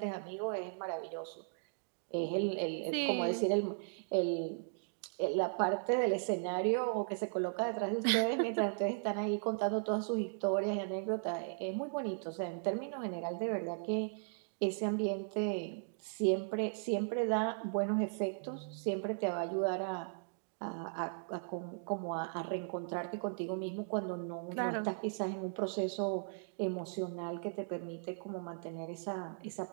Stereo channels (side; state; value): left; silent; digital silence